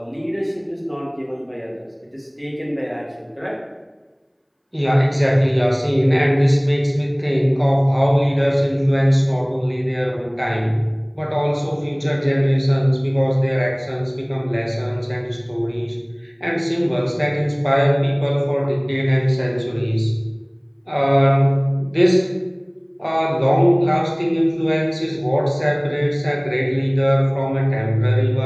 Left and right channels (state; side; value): identical; both; correlation 1.00